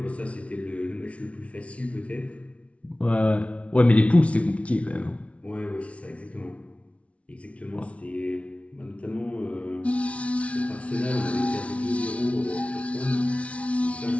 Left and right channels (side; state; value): right; late; 0.063 ms